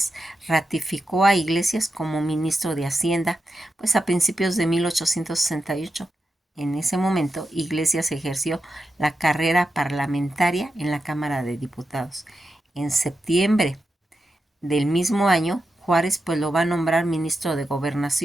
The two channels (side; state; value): both; normal; correlation 0.89